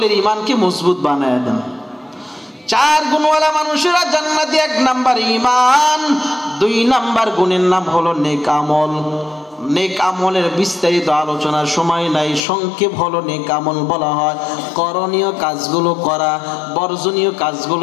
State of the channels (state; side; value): drops out; right; at 12.4 s